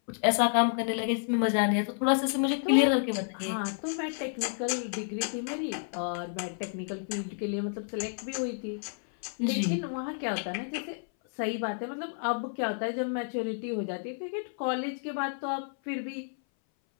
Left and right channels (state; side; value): silent; right; 57 dB below the other